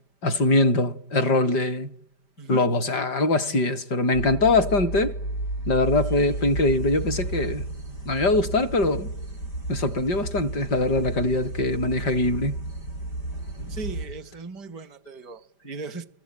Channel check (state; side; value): late; right; 5.1 ms